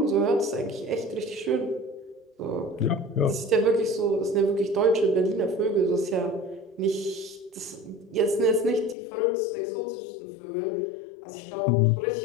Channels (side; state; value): right; drops out; at 9.0 s